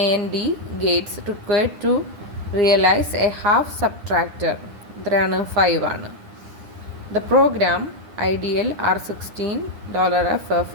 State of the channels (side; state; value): left; late; 9.9 ms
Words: gates required to realize a half subtractor എത്രയാണ്? 5 ആണ്. The program ideal R16 $FF